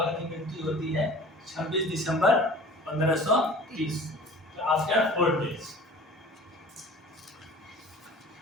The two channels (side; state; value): both; normal; correlation 0.44